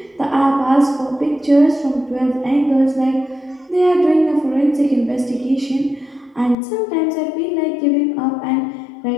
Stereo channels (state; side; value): drops out; right; at 6.6 s